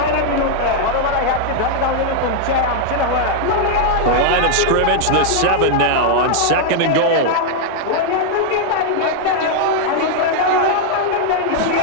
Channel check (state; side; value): different; both; correlation 0.00